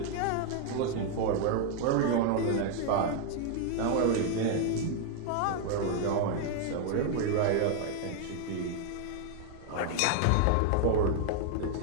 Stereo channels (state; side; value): different; both; correlation 0.00